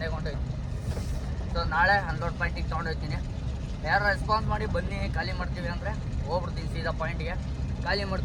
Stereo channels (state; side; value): identical; both; correlation 1.00